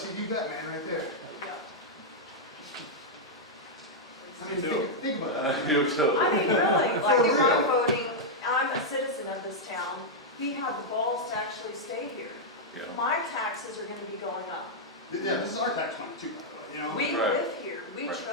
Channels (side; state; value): both; normal; correlation -0.04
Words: you that man right there. Yeah. I mean, think about that. You too. I mean, really, like For if real. I'm voting, I'm a citizen of this town, we have the balls to actually stay here. Yeah. My taxes are gonna be going up. Yeah, this is our tax money too, by the way, you know? We Right. live here, we Right.